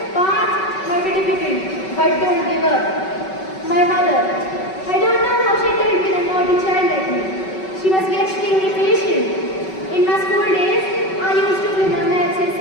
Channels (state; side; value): late; right; 5.3 ms